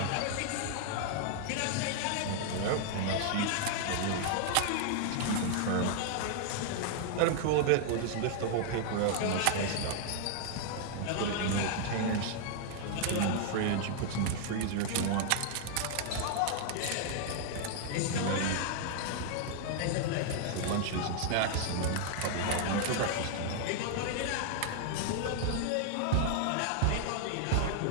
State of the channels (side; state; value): both; different; correlation 0.00